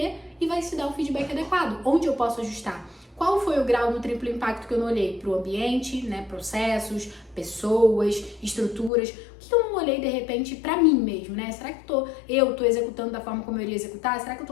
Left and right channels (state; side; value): drops out; right; at 8.9 s